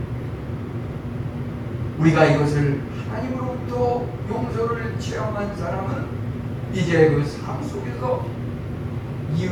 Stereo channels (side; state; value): both; identical; correlation 1.00